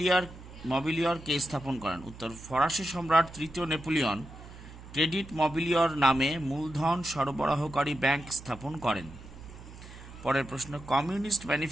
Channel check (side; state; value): right; noise; hum, 16 dB below the sound